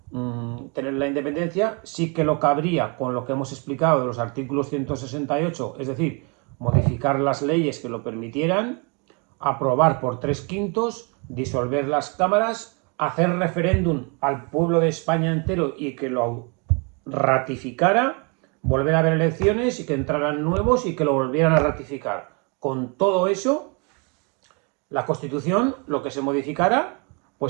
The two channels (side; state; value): left; quieter; 33.6 dB